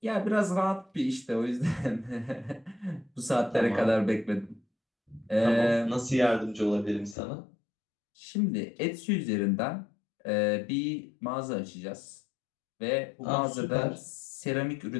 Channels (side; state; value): right; drops out; at 7.2 s